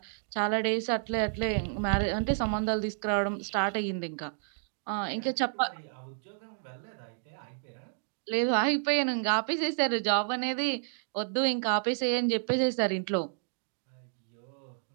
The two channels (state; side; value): silent; left; digital silence